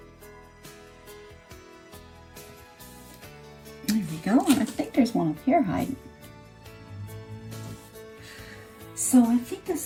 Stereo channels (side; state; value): both; identical; correlation 1.00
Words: There we go, and I think there's one up here hiding. So I think